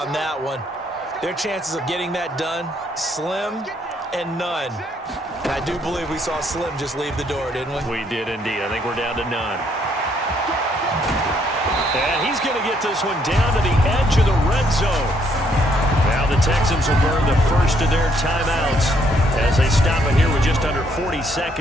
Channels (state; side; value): normal; both; correlation 0.70